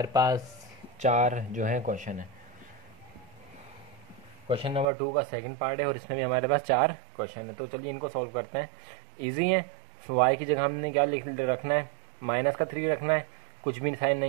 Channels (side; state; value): left; drops out; at 4.9 s